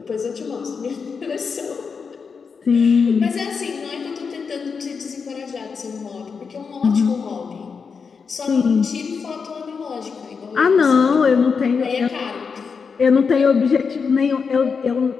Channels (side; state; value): right; quieter; 5.6 dB